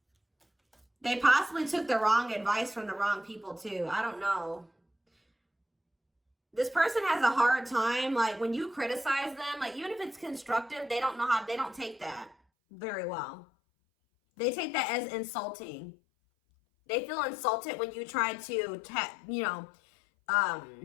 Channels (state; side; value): drops out; right; at 12.4 s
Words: They possibly took the wrong advice from the wrong people too. I don't know. This person has a hard time, like when you criticize them, like even if it's constructive, they don't take that very well. They take that as insulting. They feel insulted when you try to,